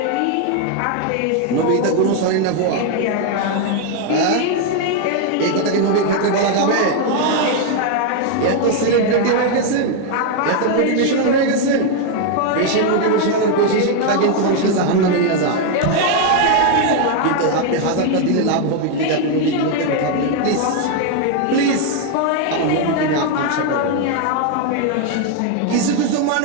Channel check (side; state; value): both; different; correlation 0.01